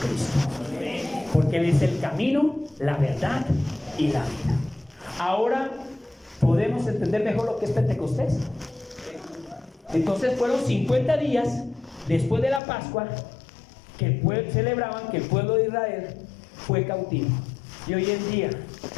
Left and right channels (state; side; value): drops out; right; at 12.6 s